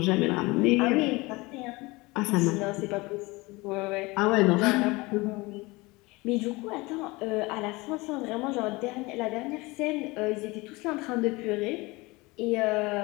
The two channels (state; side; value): quieter; right; 23.2 dB